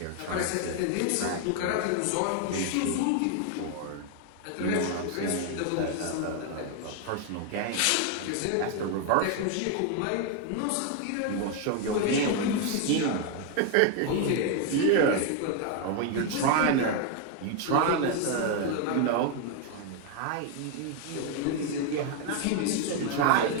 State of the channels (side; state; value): both; different; correlation 0.01